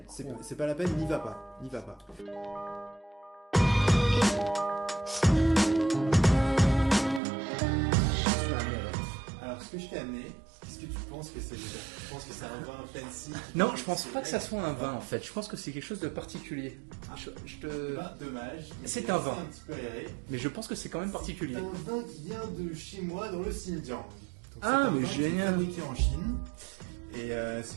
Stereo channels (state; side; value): drops out; left; at 7.2 s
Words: c'est pas la peine, n'y va pas, n'y va pas. Alors ce que je t'ai amené, qu'est-ce que tu penses que c'est déjà? Tu penses que c'est un vin fancy Non, je pense pas que ça soit un vin en fait. Je pense que c'est quelque chose de particulier. Eh ben, dommage, donc C'est j'ai un laissé vin. un petit peu aéré. Mais je pense que c'est quand même particulier. C'est un vin qui vient de chez moi dans le Xinjiang. Donc c'est Ah, un mais vin qui est génial. fabriqué en Chine. Et c'est